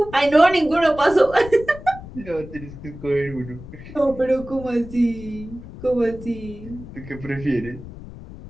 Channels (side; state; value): left; noise; rumble, 14 dB below the sound